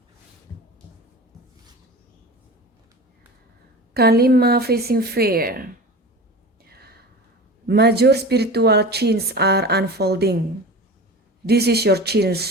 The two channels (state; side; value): normal; both; correlation 0.33